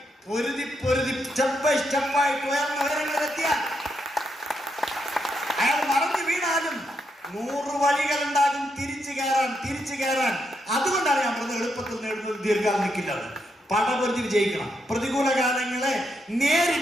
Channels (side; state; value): both; normal; correlation 0.80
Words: പൊരുതി സ്റ്റെപ്പ് ബൈ സ്റ്റെപ്പായിട്ട് ഉയർന്ന ഉയരങ്ങളിലെത്തിയാൽ അയാൾ മറന്നു വീണാലും 100 വഴികളുണ്ടാകും തിരിച്ചു കയറാൻ. അതുകൊണ്ടാണ് ഞാൻ പറഞ്ഞത് എളുപ്പത്തിൽ നേടുന്നത് ദീർഘകാലം നിൽക്കില്ല. പടപൊരുതി വിജയിക്കണം. പ്രതികൂല കാലങ്ങളെ